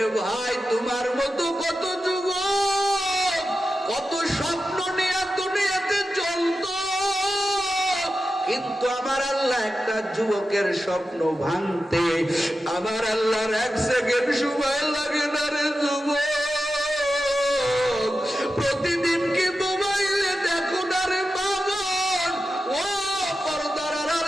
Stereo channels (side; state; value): both; normal; correlation 0.91